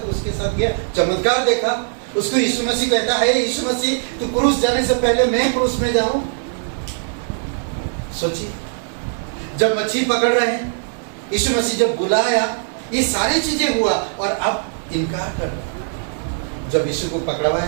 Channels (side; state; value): left; silent; digital silence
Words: उसके साथ गया, चमत्कार देखा। उसको यीशु मसीह कहता है, यीशु मसीह तू क्रूस जाने से पहले मैं क्रूस में जाऊं। सोचिए, जब मच्छी पकड़ रहे हैं, यीशु मसीह जब बुलाया, ये सारी चीजें हुआ, और अब इनकार कर रहा। जब यीशु को